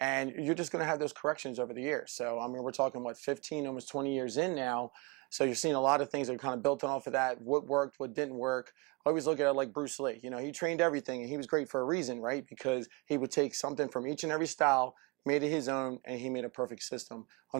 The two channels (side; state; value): left; quieter; 26.8 dB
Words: you're just going to have those corrections over the years. So, I mean, we're talking, 15, almost 20 years in now. So you're seeing a lot of things that are kind of built on off of that. What worked, what didn't work. I always look at it like Bruce Lee. You know, he trained everything, and he was great for a reason, right? Because he would take something from each and every style, made it his own, and he made a perfect system.